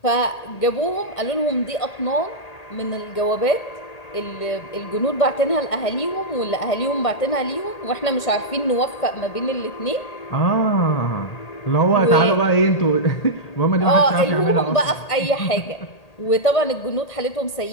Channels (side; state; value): right; late; 1.8 ms